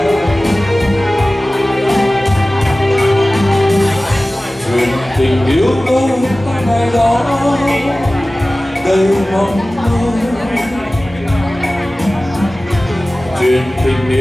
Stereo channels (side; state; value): both; normal; correlation 0.97